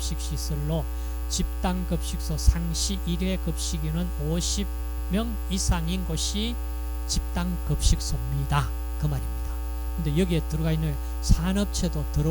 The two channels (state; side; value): identical; both; correlation 1.00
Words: 집단급식소 상시 1회 급식인은 50명 이상인 곳이 집단급식소입니다. 그 말입니다. 근데 여기에 들어가 있는 산업체도